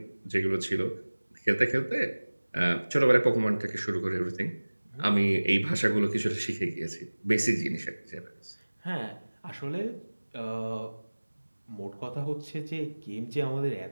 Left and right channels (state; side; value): inverted; both; correlation -1.00